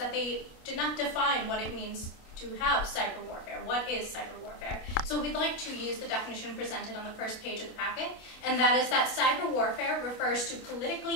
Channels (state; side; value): late; right; 27 ms